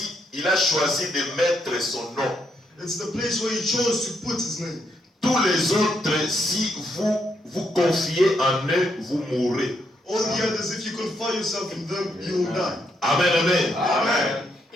a choisi de mettre son nom. It's the place where He chose to put His name. Tous les autres, si vous vous confiez en eux, vous mourrez. All the others, if you confine yourself in them, you will die. Amen, amen. Amen.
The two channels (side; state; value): both; normal; correlation 0.77